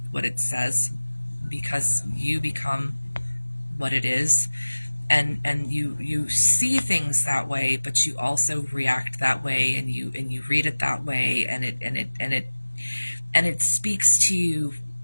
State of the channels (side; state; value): both; inverted; correlation -1.00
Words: says, because you become what it is, and you see things that way, but you also react that way, and you read it that way, and it speaks to you